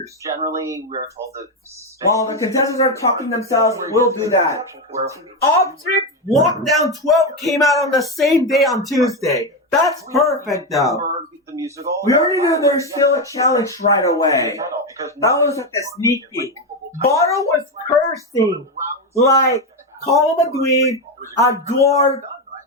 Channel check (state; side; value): normal; both; correlation 0.10